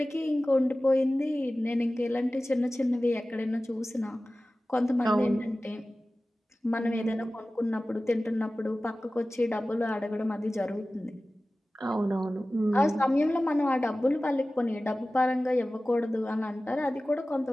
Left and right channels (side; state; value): both; normal; correlation 0.96